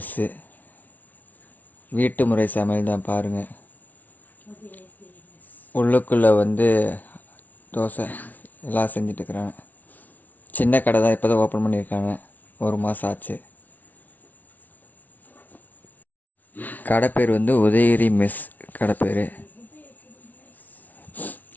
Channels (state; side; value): late; right; 0.078 ms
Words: வீட்டு முறை சமையல் தான் பாருங்கள். உள்ளுக்குள்ளே தோசை எல்லாம் செஞ்சிட்ருக்குறாங்க. சின்ன கடை தான், இப்போ தான் ஓப்பன் பண்ணியிருக்காங்க. 1 மாதம் ஆச்சு. கடை பேர் உதயகிரி மெஸ் கடை பேர்.